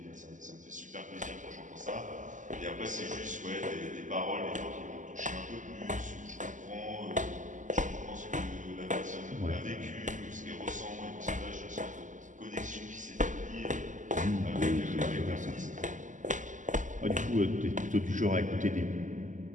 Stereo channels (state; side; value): late; left; 0.37 ms